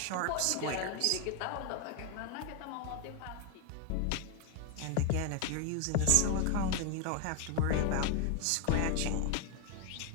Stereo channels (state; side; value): different; both; correlation 0.01